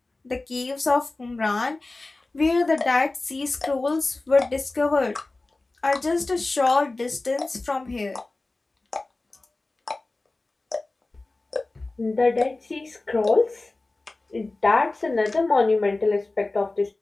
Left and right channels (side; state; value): right; quieter; 3.1 dB